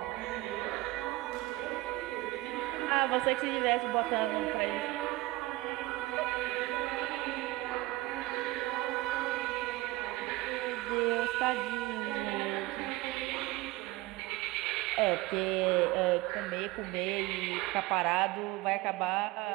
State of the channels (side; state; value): left; quieter; 19.7 dB